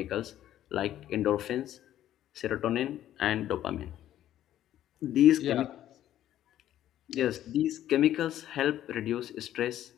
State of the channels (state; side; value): quieter; right; 12.2 dB